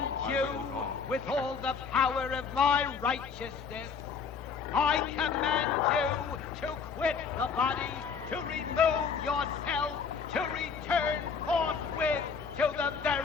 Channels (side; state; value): right; quieter; 5.7 dB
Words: you, with all the power of my righteousness, I command you to quit the body, to remove yourself, to return forthwith to the